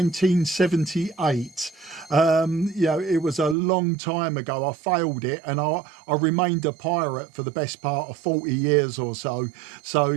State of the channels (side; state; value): left; drops out; at 3.6 s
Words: You know, it was a long time ago. I failed it, and I remained a pirate for the best part of 40 years or so. So,